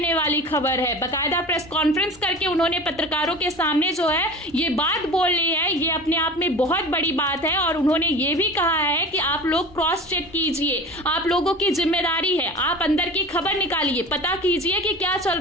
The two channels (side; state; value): both; normal; correlation 0.36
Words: वाली खबर है। बाकायदा प्रेस कॉन्फ्रेंस करके उन्होंने पत्रकारों के सामने जो है ये बात बोल ली है, ये अपने आप में बहुत बड़ी बात है। और उन्होंने ये भी कहा है कि आप लोग क्रॉस चेक कीजिए, आप लोगों की जिम्मेदारी है, आप अंदर की खबर निकालिए, पता कीजिए कि क्या चल